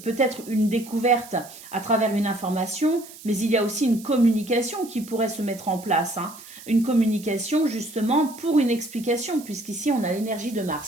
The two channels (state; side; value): noise; right; hiss, 18 dB below the sound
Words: peut-être une découverte à travers une information, mais il y a aussi une communication qui pourrait se mettre en place. Hein. Une communication, justement, pour une explication, puisqu'ici, on a l'énergie de